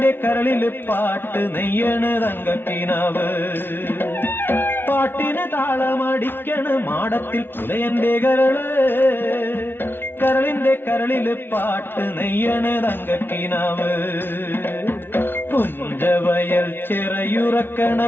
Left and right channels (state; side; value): late; right; 0.11 ms